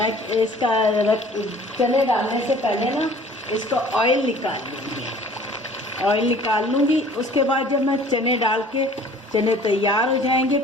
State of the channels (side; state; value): both; normal; correlation 0.50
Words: इसका चने डालने से पहले ना इसको ऑयल निकाल लूँगी। उसके बाद जब मैं चने डाल के चने तैयार हो जाएंगे